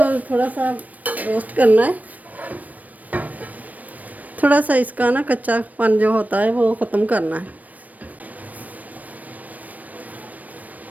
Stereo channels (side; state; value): left; late; 0.075 ms